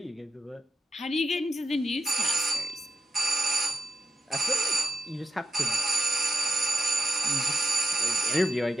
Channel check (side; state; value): both; normal; correlation 0.84